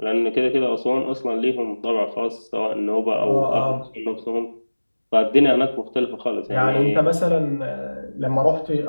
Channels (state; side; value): inverted; both; correlation -1.00